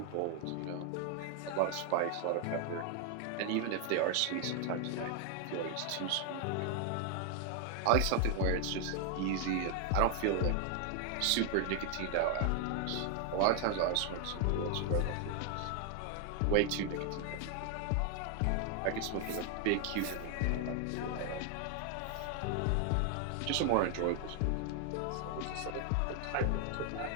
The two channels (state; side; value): different; both; correlation 0.00